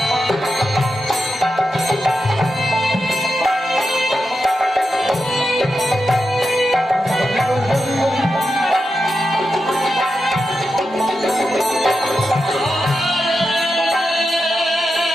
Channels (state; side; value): normal; both; correlation 0.89